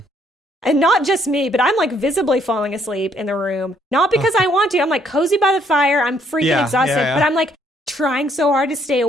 not just me, but I'm like visibly falling asleep in the room. Not because I want to. I'm like cozy by the fire. I'm freaking exhausted. But I'm like trying so hard to stay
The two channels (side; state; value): both; normal; correlation 0.68